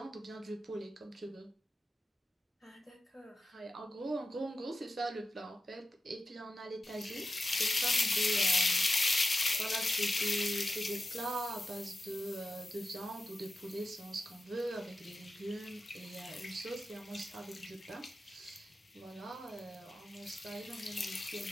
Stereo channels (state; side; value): normal; both; correlation 0.92